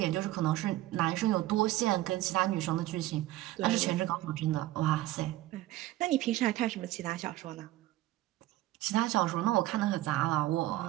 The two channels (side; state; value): left; quieter; 16.0 dB